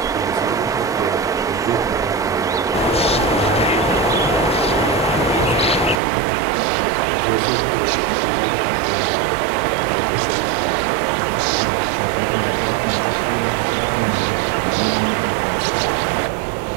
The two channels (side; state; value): left; drops out; at 6.0 s